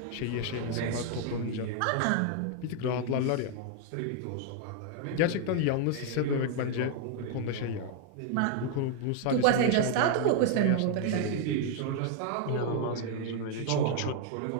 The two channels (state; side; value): different; both; correlation 0.00